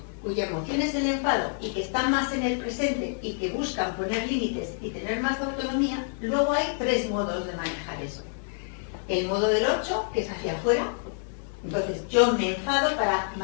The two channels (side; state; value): right; silent; digital silence